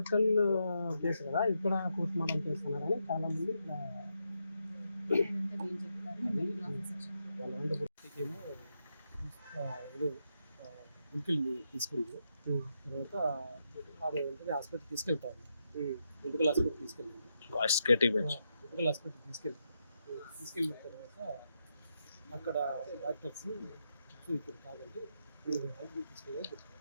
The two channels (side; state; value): both; inverted; correlation -0.83